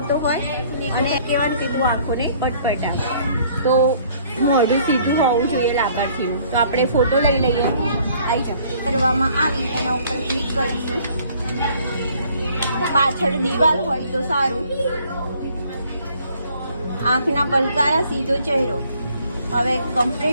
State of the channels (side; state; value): both; inverted; correlation -0.59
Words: હોય અને કહેવાનું કે તું આંખોને પટપટા. તો મોઢું સીધું હોવું જોઈએ લાભાર્થીનું. તો આપણે ફોટો લઈ લઈએ. આવી જાય કરવામાં આવી એના ઉપર ક્લિક કરીશું. પાછળ દિવાલ હોય તો સારું. આંખના પલકારા, સીધો ચહેરો. હવે